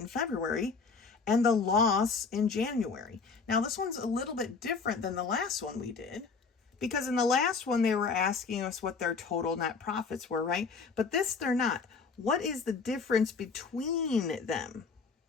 in February and the loss in January? Now, this one's a little bit different than the last one we did, because in the last one, they were asking us what their total net profits were, right? But this, they're not. What is the difference between them?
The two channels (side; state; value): right; quieter; 4.8 dB